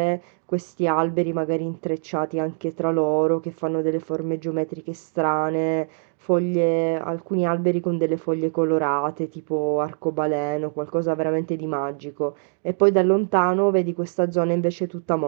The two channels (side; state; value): left; silent; 63 dB below the other